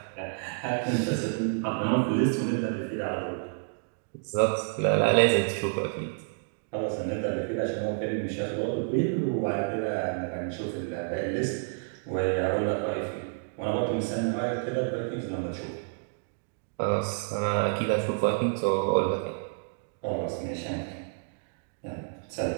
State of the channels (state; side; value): silent; left; 58 dB below the other